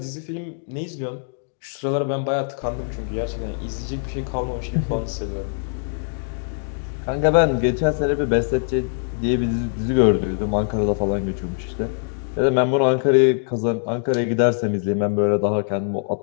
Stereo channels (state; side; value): silent; right; digital silence